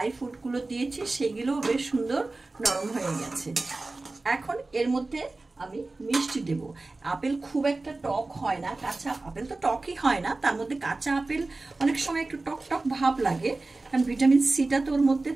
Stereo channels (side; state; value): left; quieter; 3.3 dB